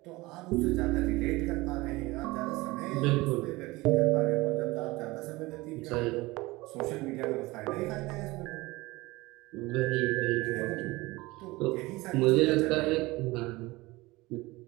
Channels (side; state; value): left; quieter; 21.2 dB